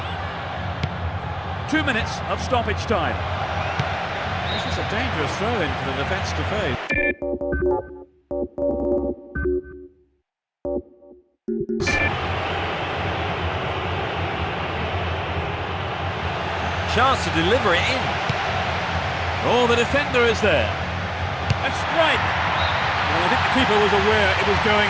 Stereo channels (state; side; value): identical; both; correlation 1.00